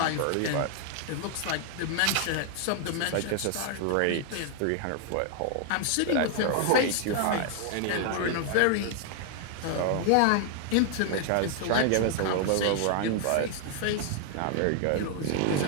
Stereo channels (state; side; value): different; both; correlation 0.00